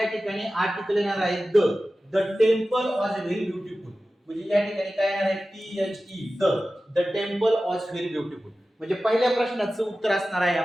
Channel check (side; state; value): both; normal; correlation 0.95